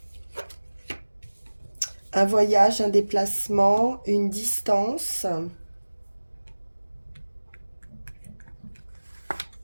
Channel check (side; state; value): both; inverted; correlation -1.00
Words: Un voyage, un déplacement, une distance.